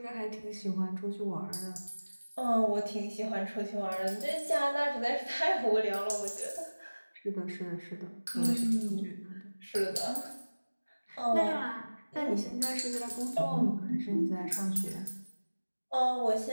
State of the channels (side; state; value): both; inverted; correlation -1.00